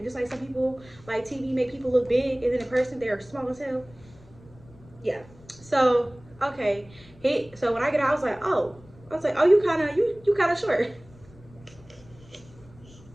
Just like some people, like TV make people look big, and then in person they are small as hell. Yeah. So okay. So when I get out, I was like, oh, you kind of short.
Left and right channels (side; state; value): left; noise; rumble, 24 dB below the sound